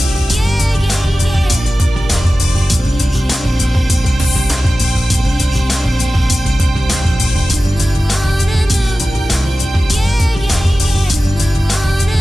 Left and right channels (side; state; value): both; normal; correlation 0.95